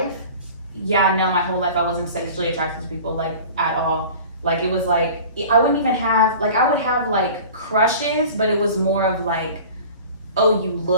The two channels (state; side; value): inverted; both; correlation -0.41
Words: yeah, no, my whole life I wasn't sexually attracted to people, like, at all. Like, it was like, I wouldn't even have, like, I would have like crushes, but it was more of like, oh, you